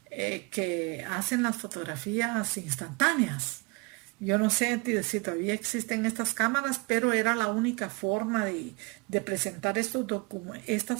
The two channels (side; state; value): left; quieter; 28.7 dB